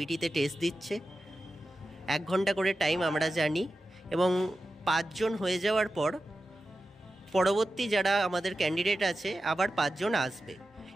টেস্ট দিচ্ছে। 1 ঘন্টা করে টাইম আমরা জানি, এবং 5 জন হয়ে যাওয়ার পর পরবর্তী যারা আমাদের ক্যান্ডিডেট আছে আবার 5 জন আসবে,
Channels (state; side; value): normal; both; correlation 0.93